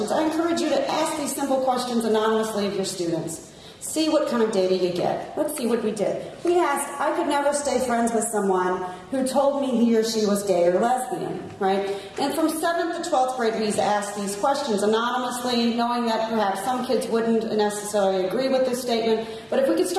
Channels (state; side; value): identical; both; correlation 1.00